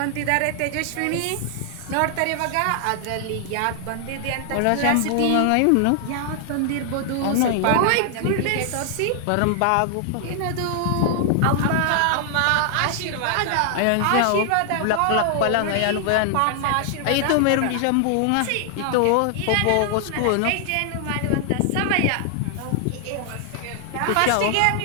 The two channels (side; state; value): both; different; correlation 0.00